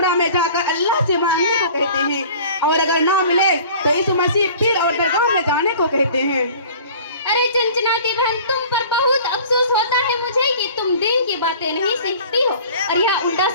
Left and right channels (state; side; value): inverted; both; correlation -0.46